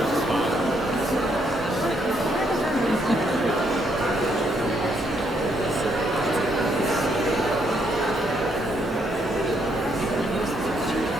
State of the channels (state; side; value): normal; both; correlation 0.73